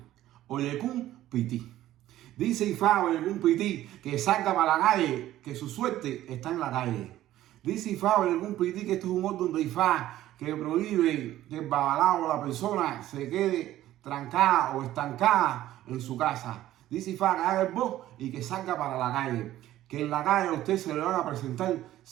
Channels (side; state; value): left; quieter; 14.0 dB